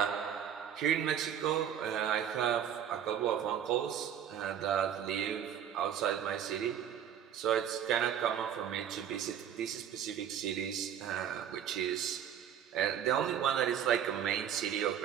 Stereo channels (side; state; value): left; quieter; 9.2 dB